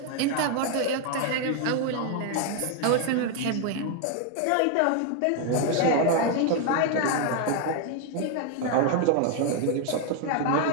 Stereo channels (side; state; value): both; different; correlation 0.01